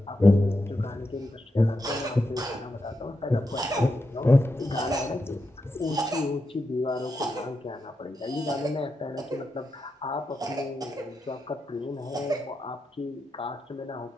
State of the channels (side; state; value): both; normal; correlation 0.86